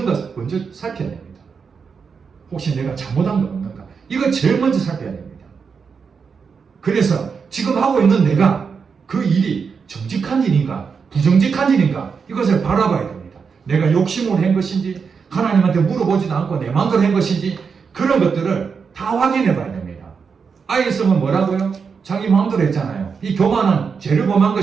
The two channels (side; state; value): left; quieter; 5.8 dB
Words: 것을 먼저 살펴야 됩니다. 혹시 내가 잘못한 거 없는가? 이거 제일 먼저 살펴야 됩니다. 그래서 지금 하고 있는 내가 그 일이 정직한 일인가 부정직한 일인가 이것을 바라봐야 됩니다. 내가 욕심으로 한 것인지 하나님한테 물어보지도 않고 내 마음대로 한 것인지 그런 것들을 다 확인해 봐야 됩니다. 아이성은 뭐라고요? 자기 마음대로 했잖아요. 이 교만은 죄를 범한